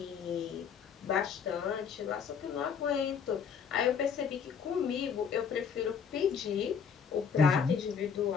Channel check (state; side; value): quieter; right; 6.7 dB